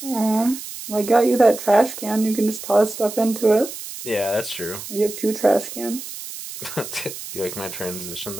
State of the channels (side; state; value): right; noise; hiss, 11 dB below the sound